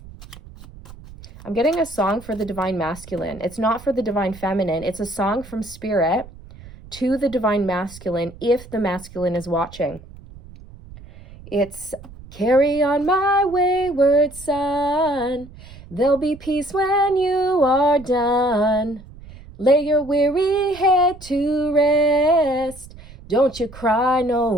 I'm getting a song for the divine masculine. It's not for the divine feminine. It's a song from spirit to the divine masculine if the masculine is watching. It's carry on my wayward son. There'll be peace when you are done. Lay your weary head to rest. Don't you cry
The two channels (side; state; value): right; noise; rumble, 18 dB below the sound